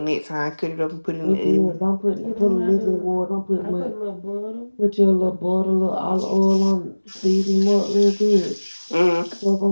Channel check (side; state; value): both; inverted; correlation -1.00